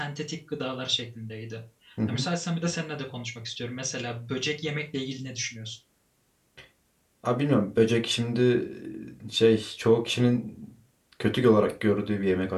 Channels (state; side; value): identical; both; correlation 1.00